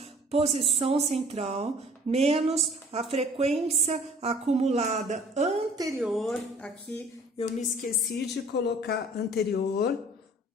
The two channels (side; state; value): both; normal; correlation 0.52